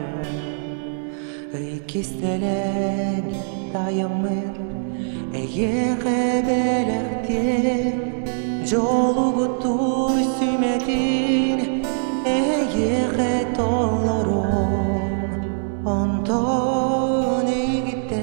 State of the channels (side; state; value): left; silent; digital silence